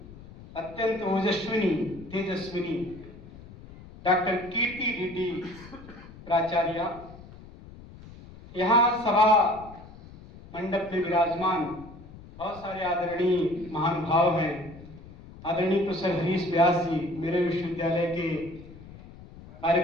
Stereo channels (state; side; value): noise; left; rumble, 18 dB below the sound